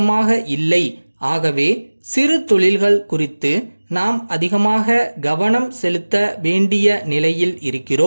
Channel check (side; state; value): both; inverted; correlation -1.00